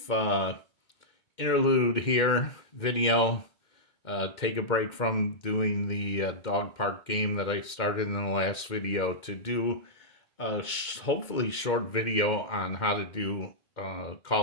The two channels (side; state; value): right; late; 2.2 ms